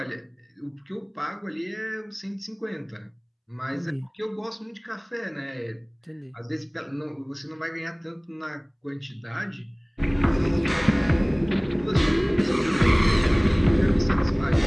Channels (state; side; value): identical; both; correlation 1.00